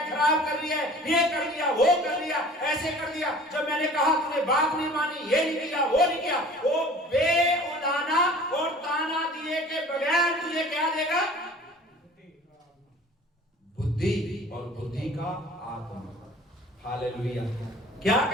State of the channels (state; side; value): normal; both; correlation 0.46